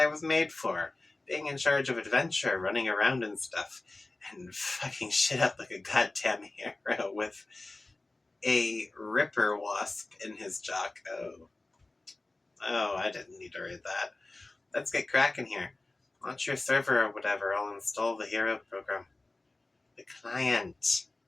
was made for. Being in charge of adventure, running around and stuff, and fucking shit up like a goddamn hero with a ripper wasp in his jock. Oh, I didn't need to read that. Let's get cracking here. Launch your server or whatever, I'll install the hero program. The client.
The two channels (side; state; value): right; quieter; 3.0 dB